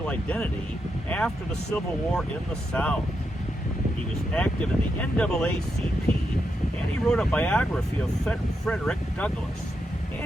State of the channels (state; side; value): normal; both; correlation 0.84